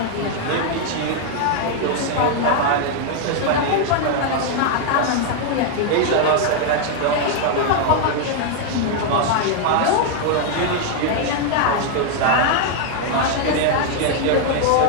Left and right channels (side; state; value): both; different; correlation 0.00